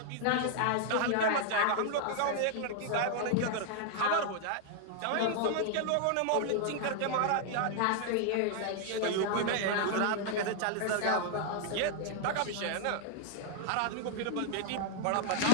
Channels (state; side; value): different; both; correlation 0.00